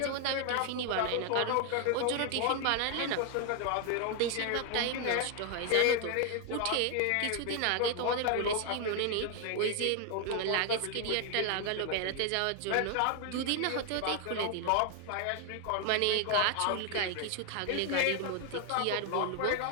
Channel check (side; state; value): both; different; correlation 0.01